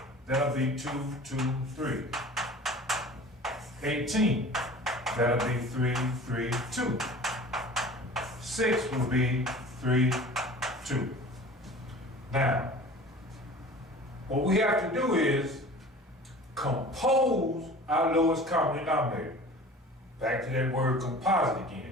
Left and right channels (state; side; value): normal; both; correlation 0.41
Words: that'll be 2, 2, 3. 18, that'll be 3, 3, 2. 6 will be 3, 2. Now, what we have to do is compose our lowest common denominator. Back to that word composite